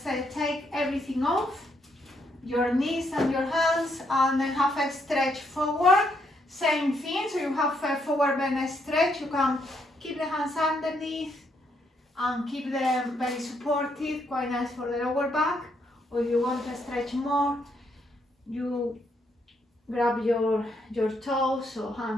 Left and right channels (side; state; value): both; normal; correlation 0.75